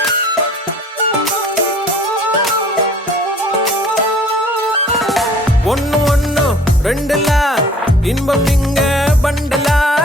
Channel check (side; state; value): both; normal; correlation 0.52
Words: ஒன்னு ஒன்னு ரெண்டுல இன்பம் இங்க பண்டலா,